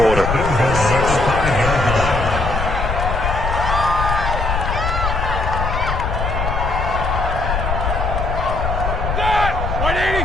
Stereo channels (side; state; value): left; noise; rumble, 2 dB below the sound